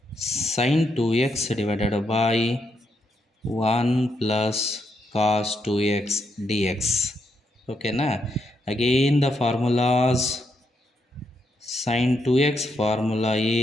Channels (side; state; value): both; normal; correlation 0.79